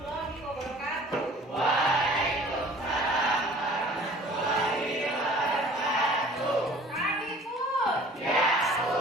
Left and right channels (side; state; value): both; normal; correlation 0.49